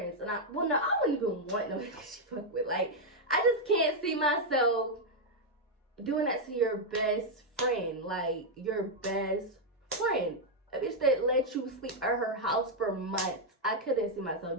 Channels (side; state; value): both; normal; correlation -0.01